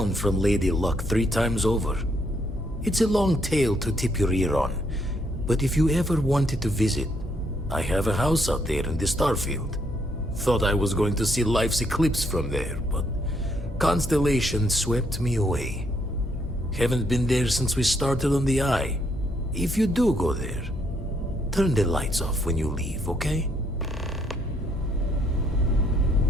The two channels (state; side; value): normal; both; correlation 0.72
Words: from Lady Luck 3 times over. It's a long tale to tip your ear on, but if you ever wanted to visit, I have a house out there in the Starfield. Thought I was going to see life's eclipse from there, but Constellation swept me away. Haven't been there since we started on the Eye. If you do go there, turn the lights off when you leave, okay?